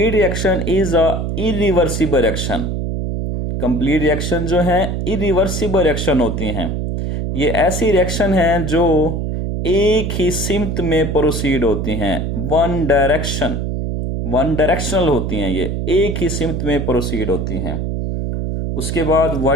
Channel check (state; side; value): noise; right; hum, 2 dB below the sound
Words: reaction is a irreversible reaction. Complete reaction जो है इरिवर्सिबल रिएक्शन होती हैं। ये ऐसी रिएक्शन हैं जो एक ही सिमत में प्रोसीड होती हैं, वन डायरेक्शनल होती हैं, ये एक ही सिमत में प्रोसीड होती हैं। उसके बाद